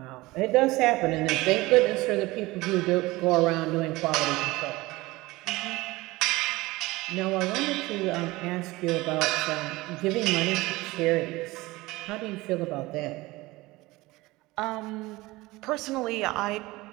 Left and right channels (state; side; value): quieter; left; 20.4 dB